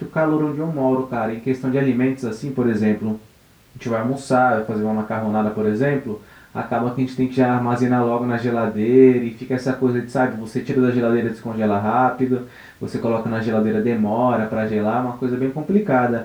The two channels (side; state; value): both; identical; correlation 1.00